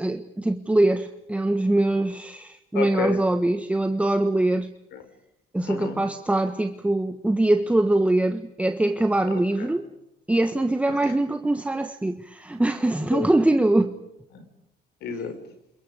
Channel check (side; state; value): both; normal; correlation 0.94